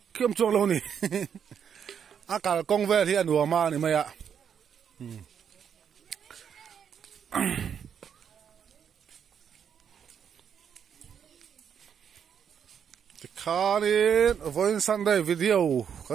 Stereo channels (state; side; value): quieter; left; 7.9 dB